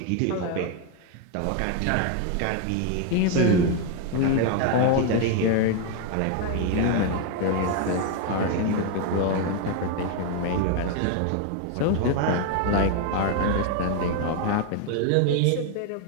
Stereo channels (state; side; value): different; both; correlation 0.01